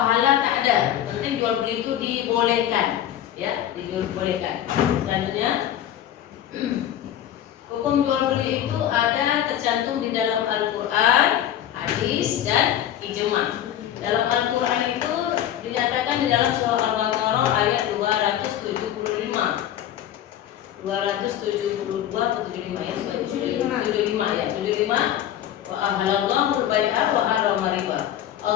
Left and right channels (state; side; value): quieter; right; 11.3 dB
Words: tak ada. Penting jual beli itu dibolehkan, ya, dibolehkan. Selanjutnya, hukum jual beli itu ada tercantum di dalam Al-Quran, hadis, dan ijma. Dalam Al-Quran itu dinyatakan di dalam surah Al-Baqarah ayat 275. 272 atau 75, ya, 75, ya, 75. Wa ahalallahu al-bai'a wa harrama riba.